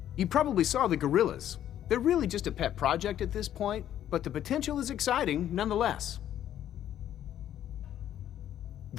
You probably saw the gorillas. They're really just a pet project at this point, but the potential is exciting nonetheless.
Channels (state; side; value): quieter; right; 11.1 dB